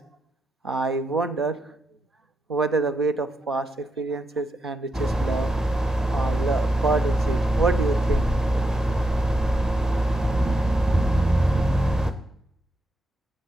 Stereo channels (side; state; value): both; normal; correlation 0.84